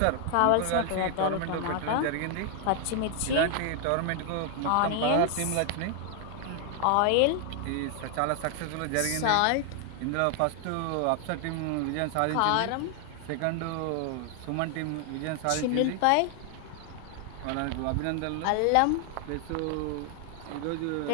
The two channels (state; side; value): different; both; correlation 0.00